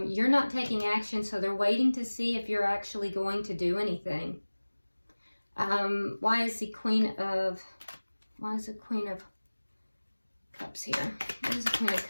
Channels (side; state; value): both; inverted; correlation -1.00